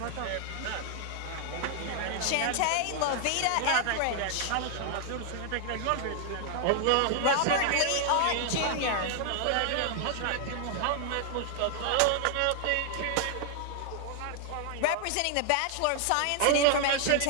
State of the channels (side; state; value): both; different; correlation 0.00